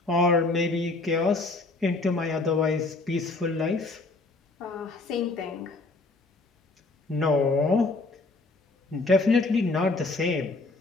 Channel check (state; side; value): quieter; right; 3.4 dB